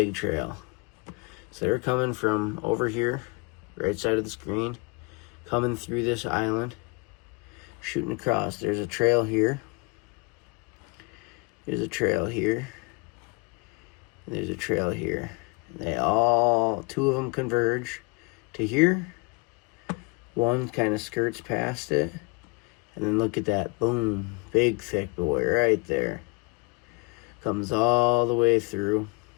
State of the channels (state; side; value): quieter; right; 28.7 dB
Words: trail. So they're coming from over here, right side of the screen, coming through this island, shooting across. There's a trail here. There's a trail here. And there's a trail here. Two of them converge to here. One kind of skirts past it. And then look at that. Boom. Big thick boy right there. Comes all the way through.